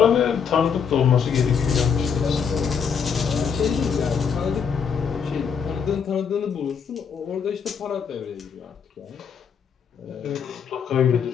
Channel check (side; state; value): right; quieter; 6.8 dB